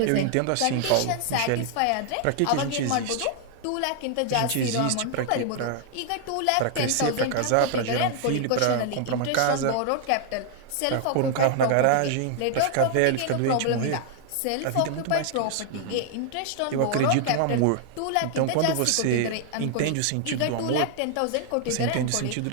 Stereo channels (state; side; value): different; both; correlation 0.00